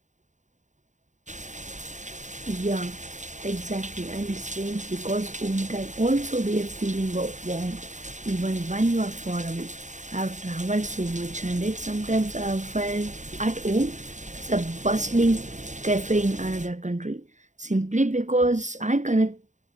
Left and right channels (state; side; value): late; left; 0.35 ms